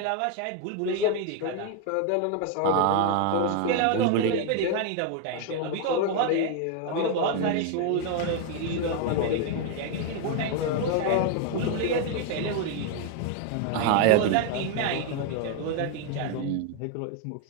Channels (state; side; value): different; both; correlation 0.01